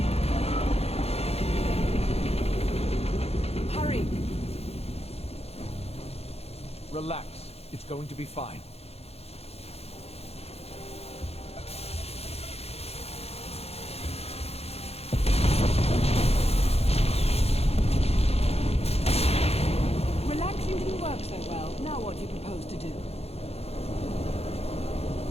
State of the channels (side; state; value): right; late; 0.29 ms